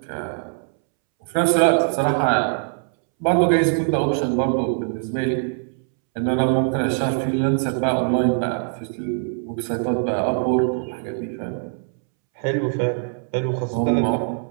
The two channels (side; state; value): left; silent; 64 dB below the other